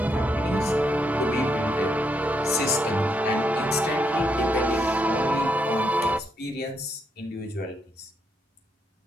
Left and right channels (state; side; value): normal; both; correlation 0.78